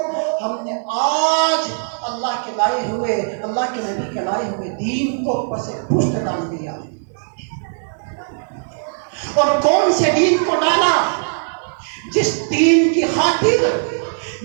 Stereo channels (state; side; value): silent; left; 62 dB below the other